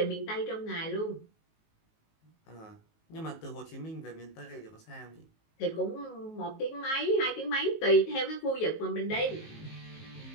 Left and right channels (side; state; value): right; late; 19 ms